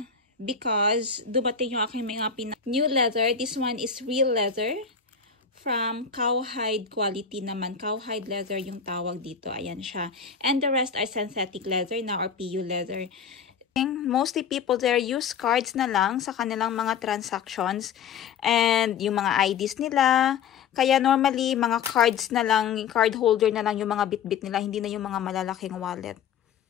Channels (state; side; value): quieter; right; 6.6 dB